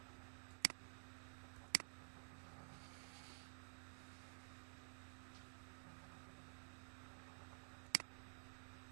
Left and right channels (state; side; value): silent; left; digital silence